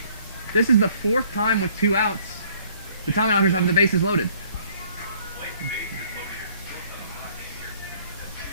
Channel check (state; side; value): inverted; both; correlation -0.60